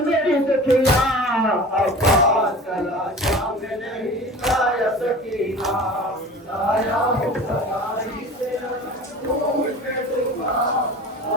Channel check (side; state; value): both; normal; correlation 0.39